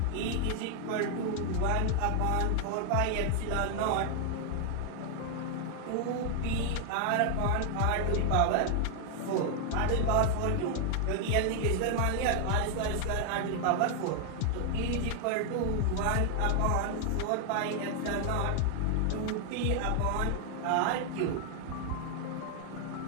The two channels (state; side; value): different; both; correlation 0.00